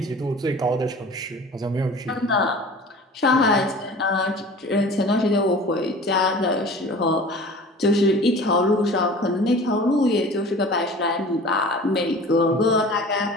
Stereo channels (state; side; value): normal; both; correlation 0.41